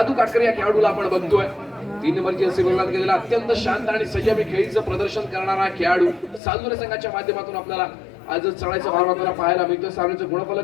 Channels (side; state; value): right; drops out; at 6.4 s